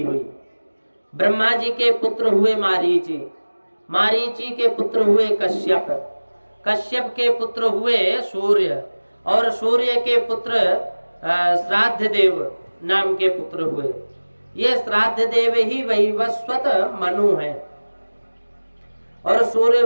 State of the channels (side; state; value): both; inverted; correlation -1.00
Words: हुई। ब्रह्मा जी के पुत्र हुए मारीची। मारीची के पुत्र हुए कश्यप। कश्यप के पुत्र हुए सूर्य और सूर्य के पुत्र श्राद्ध देव नाम के पुत्र हुए। ये श्राद्ध देव ही वैवस्वत मनु है और